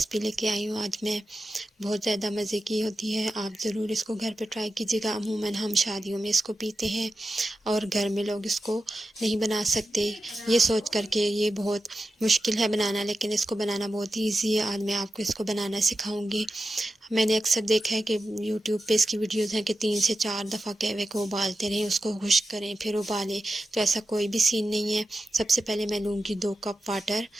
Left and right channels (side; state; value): both; normal; correlation 0.91